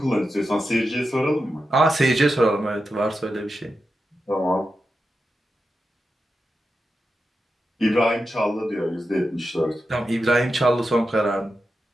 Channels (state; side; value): normal; both; correlation 0.89